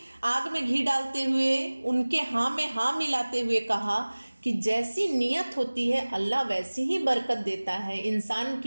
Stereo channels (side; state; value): both; inverted; correlation -1.00